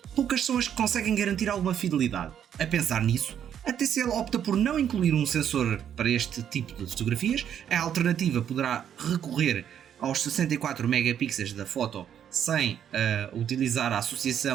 poucas são as que conseguem garantir alguma fidelidade. A pensar nisso, a TCL opta por não incluir um sensor para este tipo de fotografias. A alternativa poderá recorrer aos 64 megapixels da foto sem utilizar a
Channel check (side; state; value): left; quieter; 9.3 dB